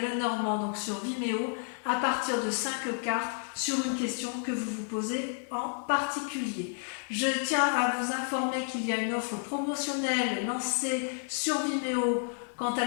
Lenormand, donc sur Vimeo, à partir de 5 cartes sur une question que vous vous posez en particulier. Je tiens à vous informer qu'il y a une offre promotionnelle lancée sur Vimeo quant à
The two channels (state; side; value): silent; right; 57 dB below the other